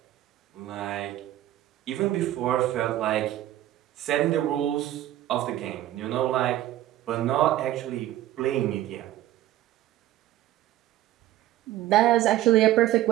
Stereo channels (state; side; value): quieter; left; 14.0 dB